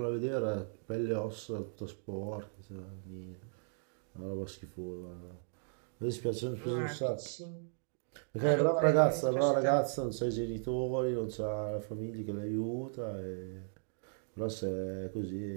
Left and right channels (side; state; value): left; silent; digital silence